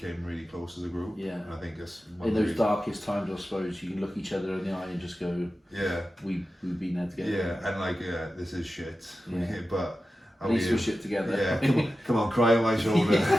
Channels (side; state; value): both; normal; correlation 0.93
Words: really close as a group. Yeah. And I think it's in those darkest times, I suppose, you can look each other in the eye and just go, "Yeah, we've been there together." Yeah, and like, this is shit. Yeah. But at least we're shit together. Yeah. Come on, cry on my shoulder.